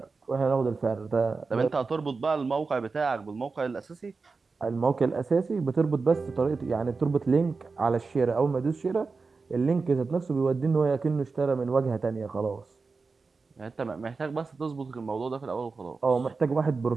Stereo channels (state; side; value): quieter; left; 4.4 dB